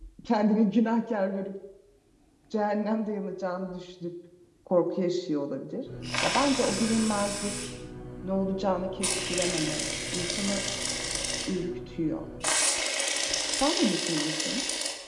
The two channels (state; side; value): identical; both; correlation 1.00